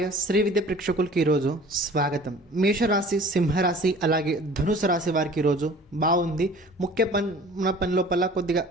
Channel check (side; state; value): both; normal; correlation 0.47